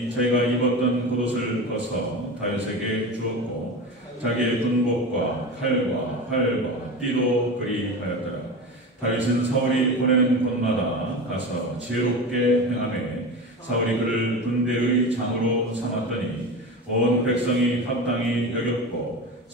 자기가 입었던 겉옷을 벗어 다윗에게 주었고 자기의 군복과 칼과 활과 띠도 그리하였더라. 다윗은 사울이 보내는 곳마다 가서 지혜롭게 행하매 사울이 그를 군대의 장으로 삼았더니 온 백성이 합당히 여겼고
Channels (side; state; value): both; normal; correlation 0.27